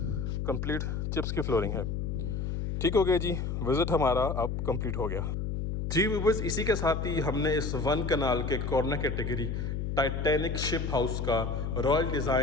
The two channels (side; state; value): left; noise; hum, 2 dB below the sound